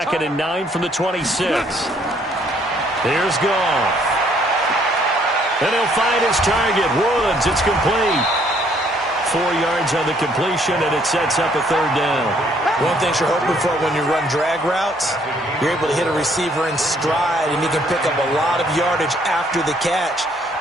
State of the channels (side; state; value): both; normal; correlation 0.65